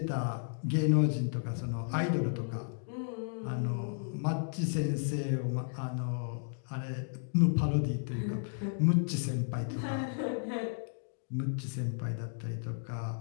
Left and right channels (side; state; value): right; silent; digital silence